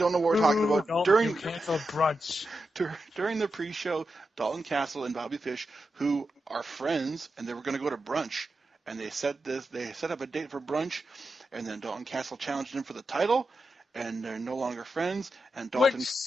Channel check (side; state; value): both; normal; correlation 0.89